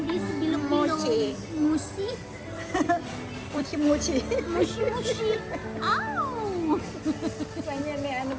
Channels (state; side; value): identical; both; correlation 1.00